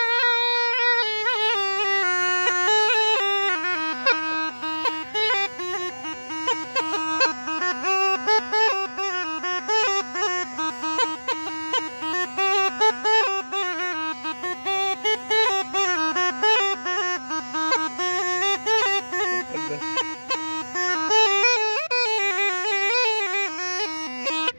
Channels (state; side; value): inverted; both; correlation -1.00